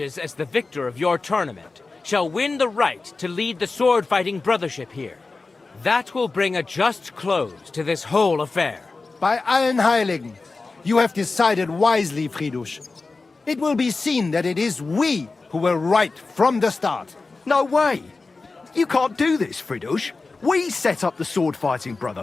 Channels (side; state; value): right; quieter; 3.8 dB